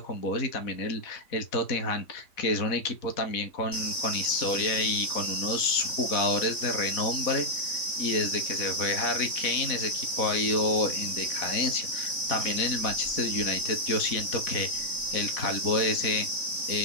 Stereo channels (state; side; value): late; right; 3.7 ms